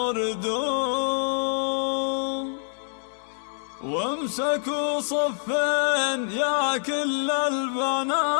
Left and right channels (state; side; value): silent; right; digital silence